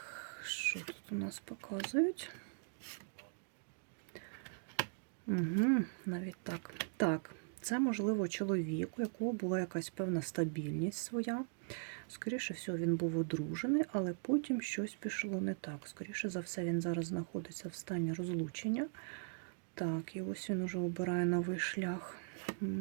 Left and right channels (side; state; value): left; silent; digital silence